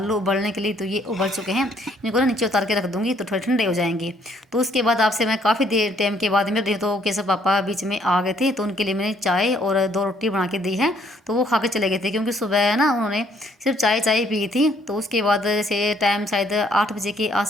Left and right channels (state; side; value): normal; both; correlation 0.66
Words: उबलने के लिए, तो ये उबल चुके हैं। इनको ना नीचे उतार के रख दूँगी तो थोड़े ठंडे हो जाएंगे। तो उसके बाद आपसे मैं काफ़ी देर टाइम के बाद मिल रही हूँ। तो केशव पापा बीच में आ गए थे, तो उनके लिए मैंने चाय और 2 रोटी बना के दी है, तो वो खा के चले गए थे, क्योंकि सुबह ना उन्होंने सिर्फ चाय पी थी। तो उसके बाद जैसे टाइम शायद 8 बजे के